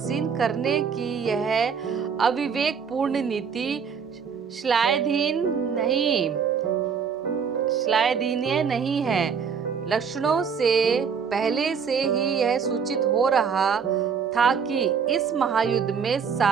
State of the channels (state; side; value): quieter; left; 6.5 dB